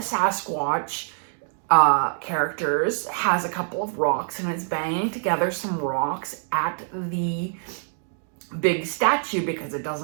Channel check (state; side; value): silent; left; digital silence